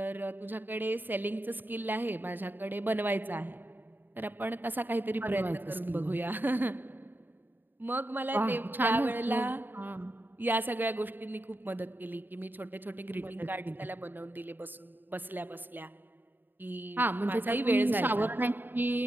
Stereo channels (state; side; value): late; left; 0.093 ms